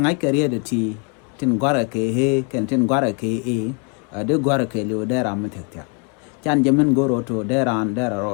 I career the tea tin guara ke he can tin guara ke de guara ke lu there am tekta. Chan Jemin goro to there and there are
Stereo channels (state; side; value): quieter; right; 35.5 dB